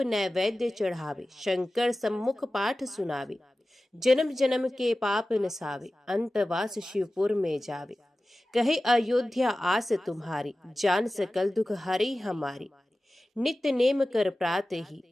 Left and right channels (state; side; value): normal; both; correlation 0.96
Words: चढ़ावे, शंकर सम्मुख पाठ सुनावे। जन्म जन्म के पाप नसावे, अंतवास शिवपुर में जावे। कहे अयोध्या आस तुम्हारी, जान सकल दुख हरी हमारी। नित्य नेम कर प्रात ही,